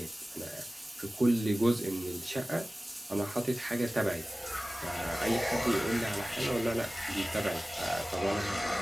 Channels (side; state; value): both; normal; correlation 0.97